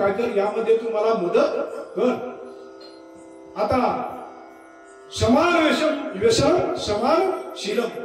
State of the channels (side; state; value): both; identical; correlation 1.00